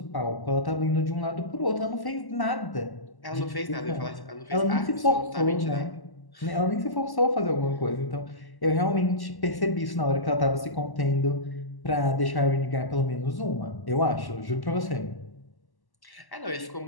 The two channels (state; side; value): late; right; 1.1 ms